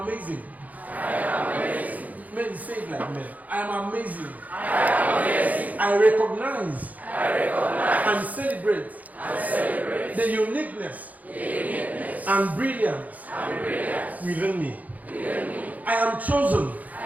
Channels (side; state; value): left; late; 0.077 ms